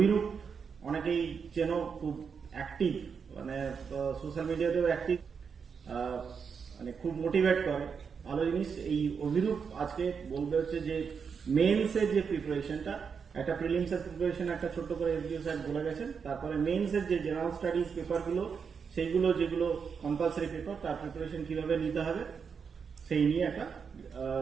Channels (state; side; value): quieter; left; 6.2 dB